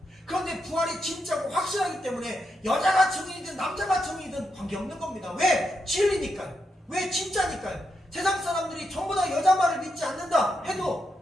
그런데 부활이 진짜고 확실하기 때문에 여자가 증인이든 남자가 증인이든 관계없는 겁니다. 왜? 진리니까요. 왜? 진짜니까요. 세상 사람들이 전부 다 여자 말을 믿지 않는다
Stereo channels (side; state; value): both; normal; correlation 0.84